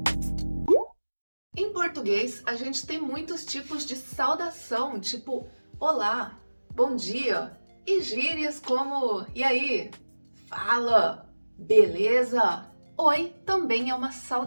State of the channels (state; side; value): inverted; both; correlation -1.00